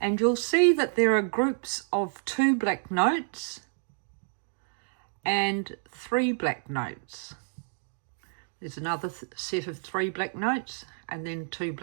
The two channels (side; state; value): left; silent; 58 dB below the other